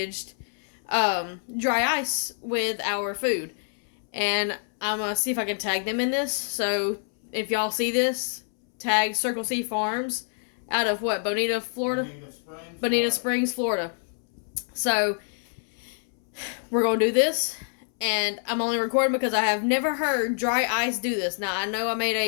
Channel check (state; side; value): silent; right; 61 dB below the other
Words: dry ice with our food. And I'm going to see if I can tag them in this. So, if y'all see this, tag Circle C Farms out of what? Bonita, Florida? Bonita Springs, Florida. So, we're going to do this, and I'm only recording because I have never heard dry ice do this. Now, I know I made